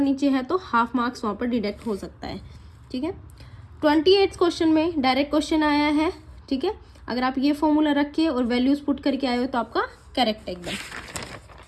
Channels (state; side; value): identical; both; correlation 1.00